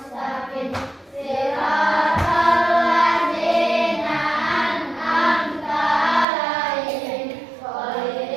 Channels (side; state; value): left; drops out; at 6.2 s